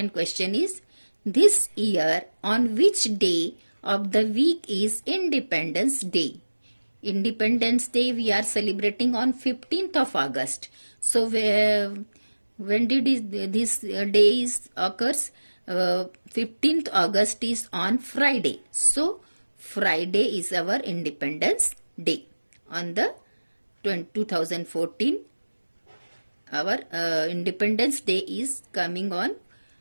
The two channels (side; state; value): both; inverted; correlation -1.00